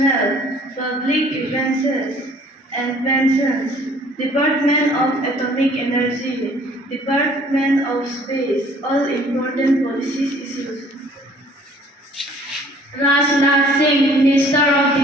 Public Grievances and Pensions, Department of Atomic Energy, Department of Space, all important policies issues. Rajnath Singh, Minister of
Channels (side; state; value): both; normal; correlation 0.55